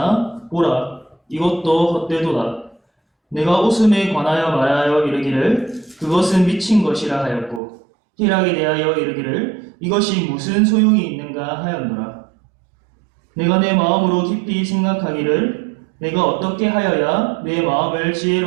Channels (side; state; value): left; drops out; at 7.6 s